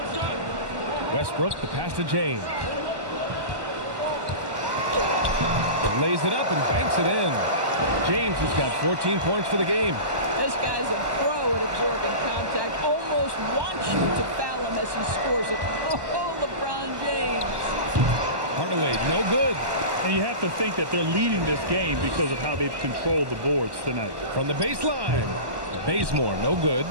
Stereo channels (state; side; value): late; left; 1.1 ms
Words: Westbrook, the pass to James. Lays it up and banks it in. James has got 14 points for the game. This guy's a pro at absorbing contact. Almost wants you to foul him as he scores it. Oh, LeBron James. Hardaway, no good. And you have to think that they're leading this game because of how they've controlled the boards tonight. From the baseline, Bazemore, no good.